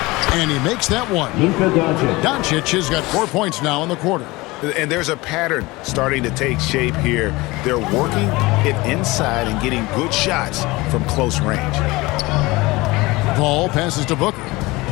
And he makes that one. Luka Doncic. Doncic has got 4 points now in the quarter. And there's a pattern starting to take shape here. They're working it inside and getting good shots from close range. Paul passes to Booker.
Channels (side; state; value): right; quieter; 21.8 dB